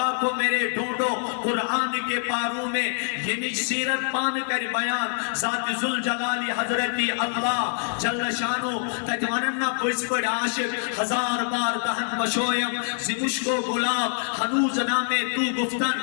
کو میرے ڈھونڈو قرآن کے پاروں میں یہ نج سیرت پان کر بیان ذات ذوالجلال حضرت اللہ جل شانو تجواننا پویس پڑ عاشق ہزار بار دہن بشویم زمشکو گلاب ہنوز نامے تو گفتن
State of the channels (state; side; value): silent; right; digital silence